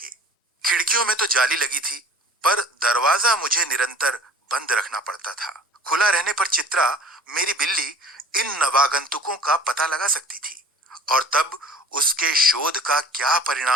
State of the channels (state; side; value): normal; both; correlation 0.47